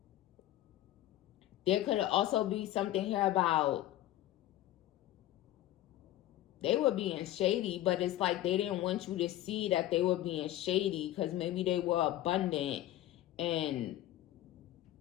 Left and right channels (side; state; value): right; quieter; 14.4 dB